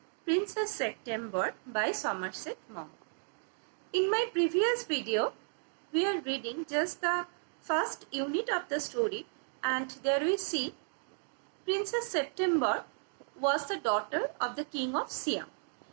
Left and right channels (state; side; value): silent; left; 55 dB below the other